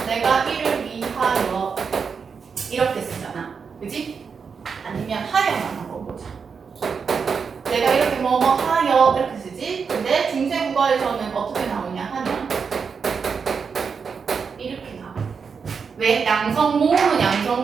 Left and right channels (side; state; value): left; quieter; 5.8 dB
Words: 내가 이를 위하여 이렇게 쓰잖아. 그지? 아니면 하여만 한번 보자. 내가 이렇게 뭐뭐 하여 이렇게 쓰지? 근데 중세국어에서는 어떻게 나오냐 하면 이렇게 나와. 왜? 양성 모음은